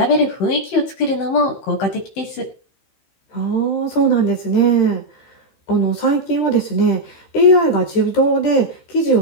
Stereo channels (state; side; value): late; right; 15 ms